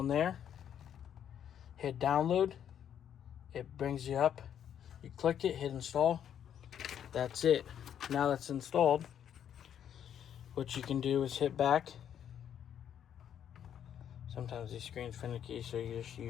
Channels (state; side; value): quieter; right; 9.4 dB